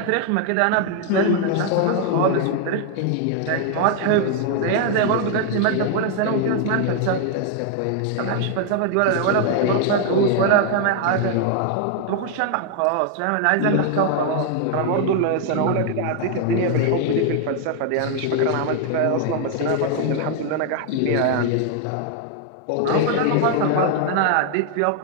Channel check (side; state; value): both; different; correlation 0.00